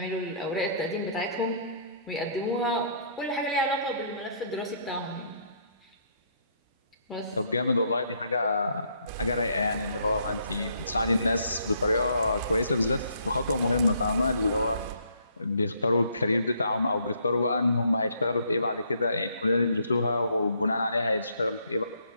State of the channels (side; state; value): both; inverted; correlation -0.66